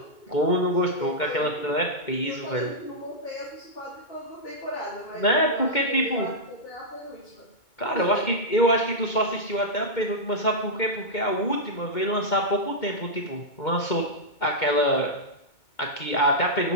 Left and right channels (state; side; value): late; right; 2.2 ms